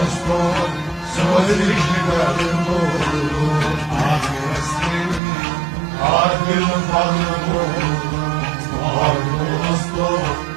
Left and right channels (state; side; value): drops out; left; at 5.2 s